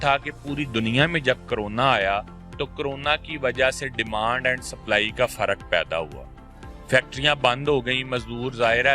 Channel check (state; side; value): identical; both; correlation 1.00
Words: کہ پوری دنیا میں جب کرونا آیا تو کرونا کی وجہ سے ڈیمانڈ اینڈ سپلائی کا فرق پیدا ہوا. فیکٹریاں بند ہو گئیں, مزدور ظاہر